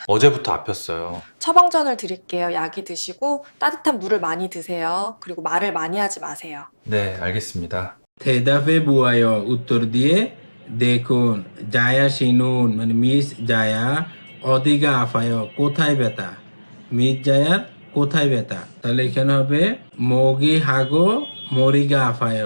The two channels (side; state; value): both; inverted; correlation -1.00